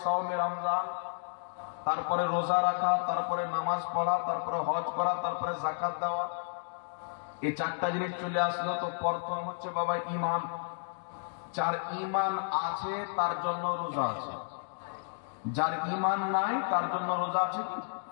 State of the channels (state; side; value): silent; right; digital silence